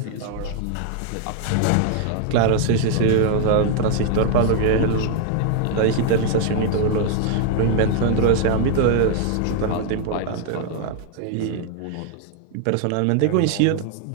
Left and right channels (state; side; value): different; both; correlation 0.00